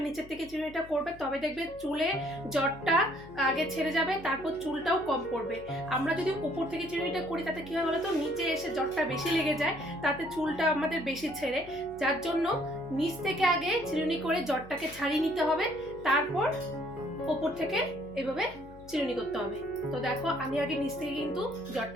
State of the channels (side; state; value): left; noise; hum, 20 dB below the sound